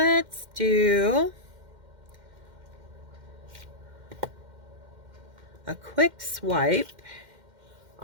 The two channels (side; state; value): left; late; 2.1 ms